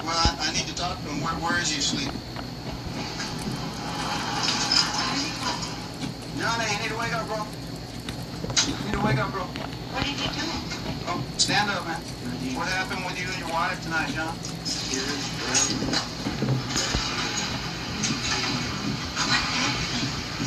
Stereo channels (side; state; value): both; identical; correlation 1.00